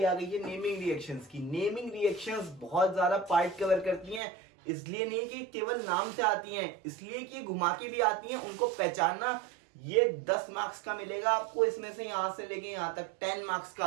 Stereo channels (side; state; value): left; drops out; at 4.2 s